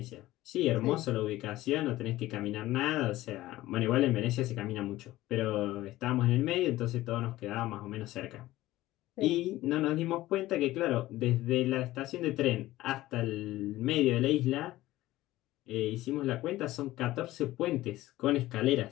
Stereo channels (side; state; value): right; quieter; 16.5 dB